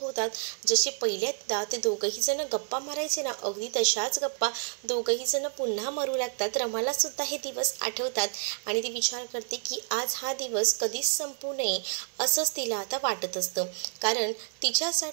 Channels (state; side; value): silent; left; 58 dB below the other